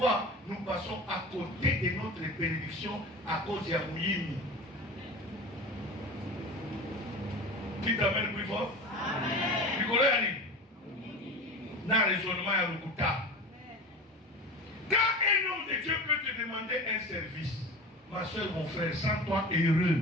nous passons à côté de notre bénédiction à cause de Yamouyimi. Qui t'amène plus fort? Amen. Nicolas Ali. Dans le raisonnement à Lukuta. Quand un homme de Dieu peut te demander un service, ma soeur, mon frère, sens-toi heureux.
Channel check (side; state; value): both; normal; correlation 0.33